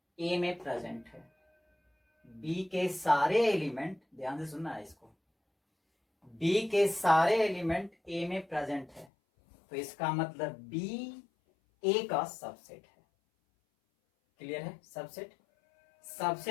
a में प्रेजेंट है। b के सारे एलिमेंट, ध्यान से सुनना है इसको, b के सारे एलिमेंट a में प्रेजेंट है। तो इसका मतलब b a का सबसेट है। क्लियर है, सबसेट।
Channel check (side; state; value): right; drops out; at 9.1 s